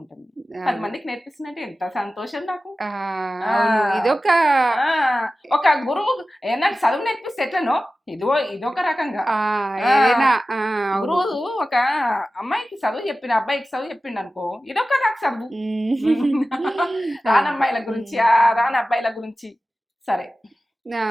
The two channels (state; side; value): normal; both; correlation 0.95